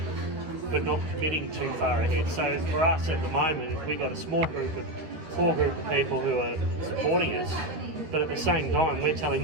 but not committing too far ahead. So for us at the moment, we've got a small group of people who are supporting us, but at the same time, we're telling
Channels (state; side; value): late; left; 13 ms